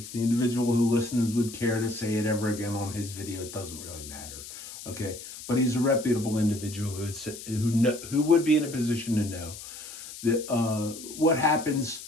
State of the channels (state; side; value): noise; left; hiss, 13 dB below the sound